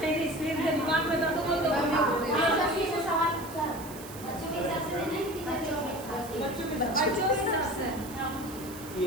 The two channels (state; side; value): noise; right; hiss, 16 dB below the sound